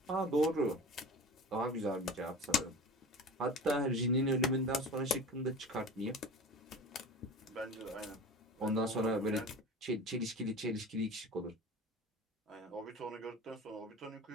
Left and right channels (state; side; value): normal; both; correlation 0.37